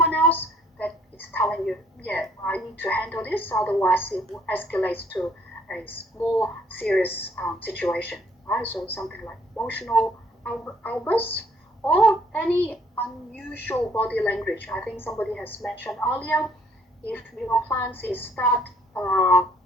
else, that it's telling you, yeah, I need to handle this, otherwise it will escalate to a more serious situation, right? So something like emotional outbursts or any unusual body language. I think somebody has mentioned earlier, if your clients is start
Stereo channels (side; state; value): both; normal; correlation 0.62